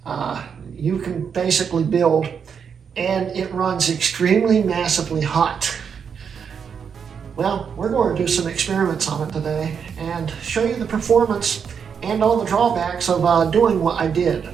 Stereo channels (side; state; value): left; quieter; 6.9 dB